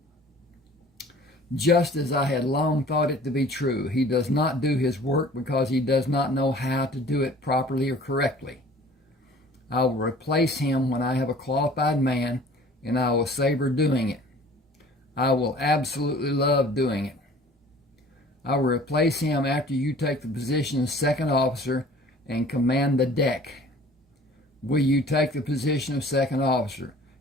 Just as I had long thought it to be true, he does not do his work because he does not know how to do it properly or correctly. I will replace him when I have a qualified man, and I will savor doing it. I will absolutely love doing it. I will replace him after you take the position of second officer and command the deck. Will you take the position of second officer?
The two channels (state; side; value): normal; both; correlation 0.49